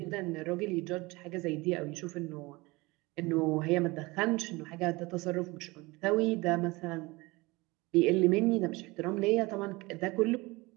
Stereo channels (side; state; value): left; quieter; 23.1 dB